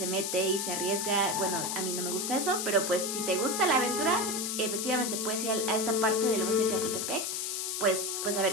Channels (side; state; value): left; noise; hiss, 2 dB below the sound